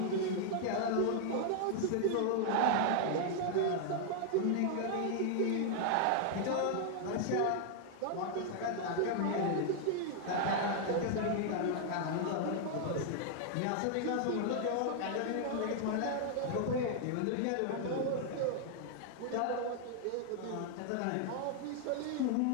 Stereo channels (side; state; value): both; different; correlation 0.00